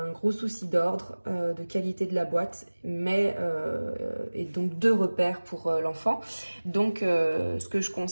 un gros souci d'ordre, de qualité de la boîte, mais et donc 2 repères pour l'enfant. Donc ce que je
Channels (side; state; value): both; inverted; correlation -1.00